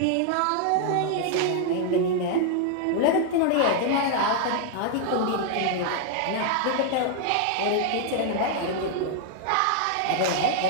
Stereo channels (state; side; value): different; both; correlation 0.00